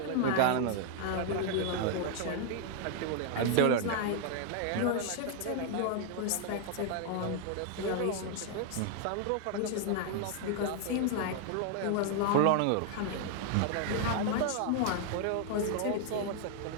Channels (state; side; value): different; both; correlation 0.00